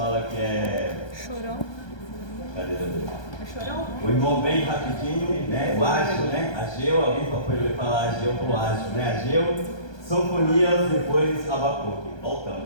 que é... Chorão. Cadê ele? É chorão? O irmão bem rapidinho, né? O Ágio, né? Ageu, alguém pode falar Ageu pro Ágio, né? Ageu, Sofonias, depois Abacuque.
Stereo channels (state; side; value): late; right; 1.2 ms